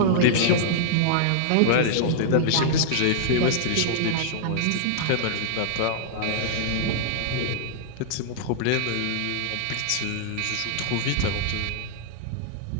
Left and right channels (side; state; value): both; different; correlation -0.01